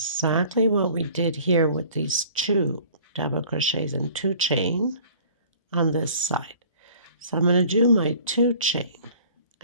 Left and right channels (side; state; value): both; inverted; correlation -0.50